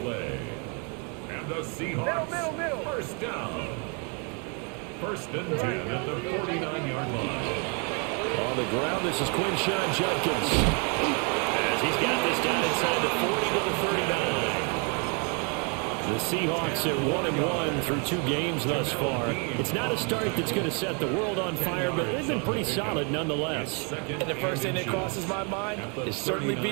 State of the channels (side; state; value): left; quieter; 36.0 dB